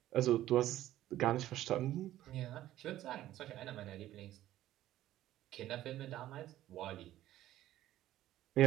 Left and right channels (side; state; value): left; quieter; 13.9 dB